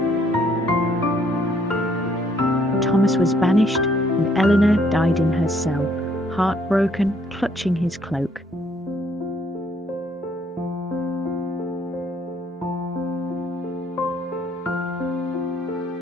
Thomas was banished, and Eleanor died in her cell, heartbroken, clutching his cloak.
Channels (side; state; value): both; normal; correlation 0.66